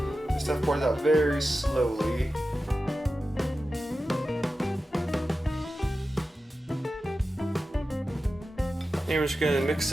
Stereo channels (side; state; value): both; normal; correlation 0.93